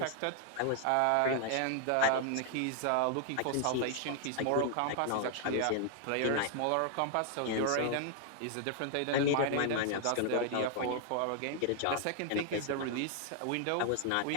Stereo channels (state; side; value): different; both; correlation 0.00